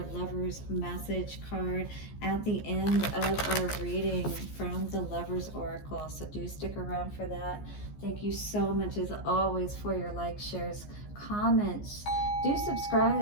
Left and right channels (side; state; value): right; late; 14 ms